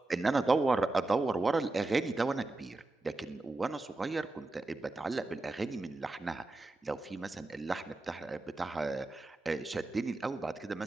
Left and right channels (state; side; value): quieter; left; 3.0 dB